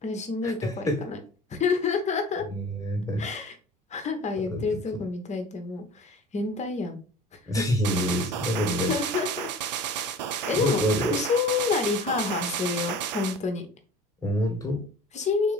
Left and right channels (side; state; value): both; normal; correlation 0.43